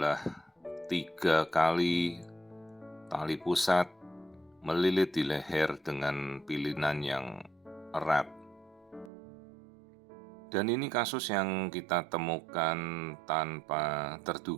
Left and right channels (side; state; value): left; drops out; at 9.1 s